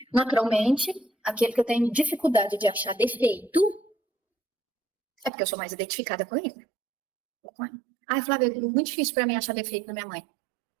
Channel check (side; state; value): left; drops out; at 5.3 s